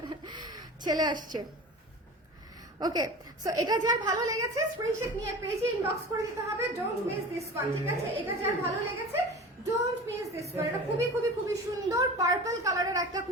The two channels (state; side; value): normal; both; correlation 0.35